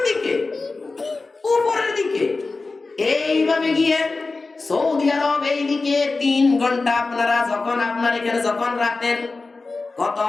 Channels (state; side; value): quieter; right; 3.7 dB